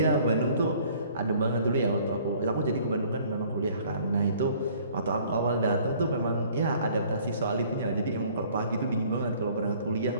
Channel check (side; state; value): both; inverted; correlation -0.56